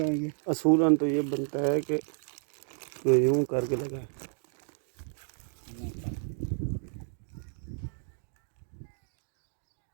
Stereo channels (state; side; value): silent; left; 57 dB below the other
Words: असूलन तो ये बनता है कि यूं करके लगाए।